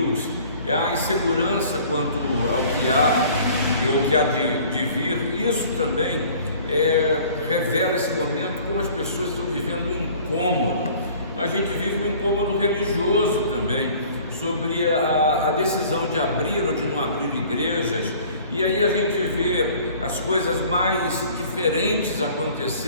é a insegurança quanto ao que há e o que há de vir. Isso também revela esse momento, como as pessoas estão vivendo um incômodo. A gente vive um incômodo religioso também, sobre a decisão de abrir ou de não abrir igrejas. E aí a gente vê as coisas mais diferentes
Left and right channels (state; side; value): inverted; both; correlation -0.50